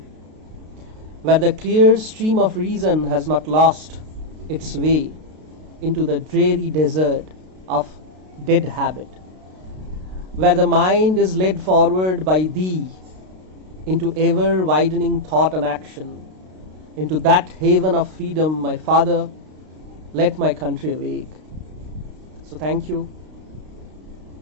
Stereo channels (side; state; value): left; late; 32 ms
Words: where the clear stream of reason has not lost its way into the dreary desert of dead habit, where the mind is led forward by thee into ever widening thought and action, into that haven of freedom, my Father, let my country awake. So thank you.